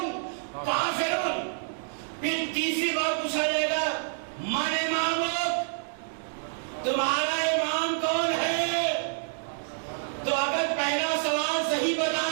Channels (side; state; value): left; silent; digital silence